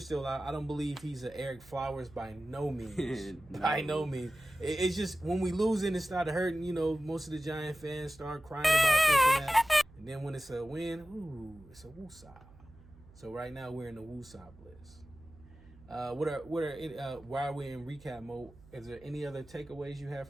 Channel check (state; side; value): noise; right; hum, 23 dB below the sound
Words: still out. I don't believe he's an Eric Flowers by no means. No. By no means. It's just when we lose it, it started hurting. Most of the Giant fans start crying about this and that. And then when it's a win, it's a woosah. So right now we're in the woosah bliss. While we're in recap mode, is there any other takeaways you have